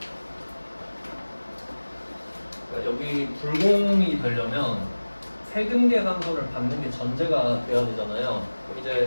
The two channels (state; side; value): inverted; both; correlation -1.00